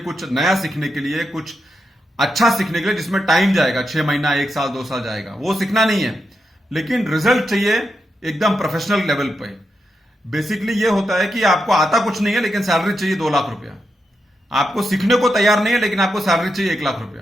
नया सीखने के लिए, कुछ अच्छा सीखने के लिए जिसमें टाइम जाएगा, 6 महीना, 1 साल, 2 साल जाएगा. वो सीखना नहीं है, लेकिन रिजल्ट चाहिए एकदम प्रोफेशनल लेवल पे. बेसिकली ये होता है कि आपको आता कुछ नहीं है लेकिन सैलरी चाहिए 2 लाख रुपया. आपको सीखने को तैयार नहीं है लेकिन आपको सैलरी चाहिए 1 लाख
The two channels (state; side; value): normal; both; correlation 0.85